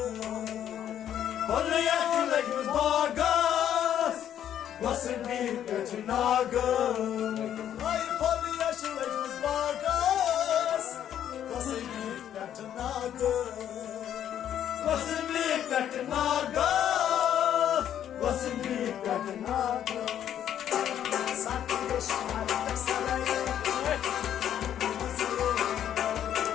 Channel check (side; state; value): right; quieter; 10.2 dB